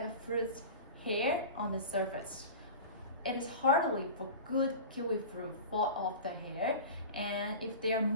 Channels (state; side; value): inverted; both; correlation -0.33